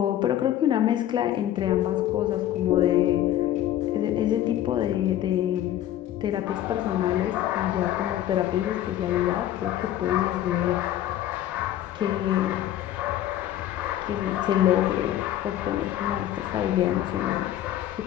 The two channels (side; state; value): right; quieter; 12.4 dB